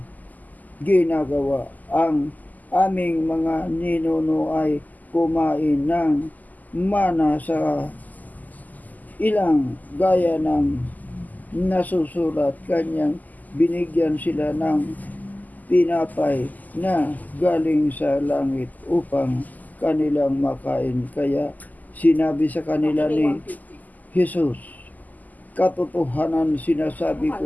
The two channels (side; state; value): right; late; 0.081 ms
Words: ginagawa? Ang aming mga ninuno ay kumain ng mana sa ilang gaya ng nasusulat, kanyang binigyan sila ng tinapay na galing sa langit upang kanilang makain." Kaya sinabi sa kanila ni Jesus, "Katotohanan sinasabi ko